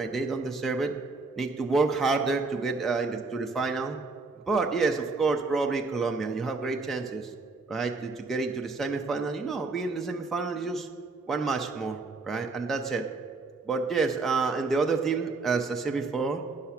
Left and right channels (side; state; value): left; quieter; 3.8 dB